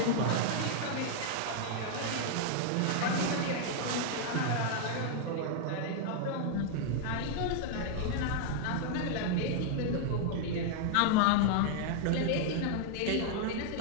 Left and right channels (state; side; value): different; both; correlation 0.00